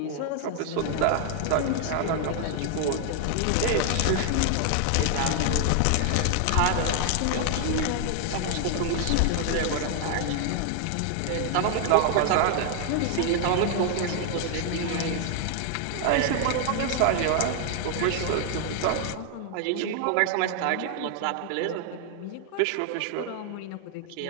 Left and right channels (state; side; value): different; both; correlation 0.00